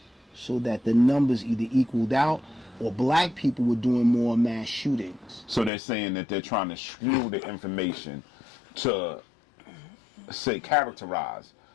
so that the numbers either equaled out or black people were doing more mass shootings. So they're saying that they're trying to skew the information to say characterize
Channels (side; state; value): right; drops out; at 5.7 s